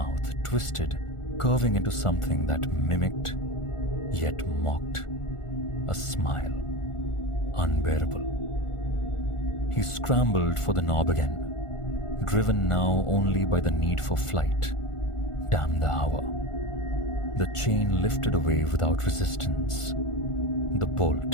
twisted, curving into something that mimicked, yet mocked, a smile, unbearable. He scrambled for the knob again, driven now only by the need for flight. Damn the hour. The chain lifted away without resistance. The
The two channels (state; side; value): late; right; 1.4 ms